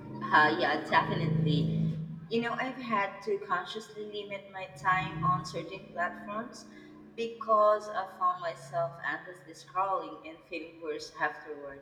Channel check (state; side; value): identical; both; correlation 1.00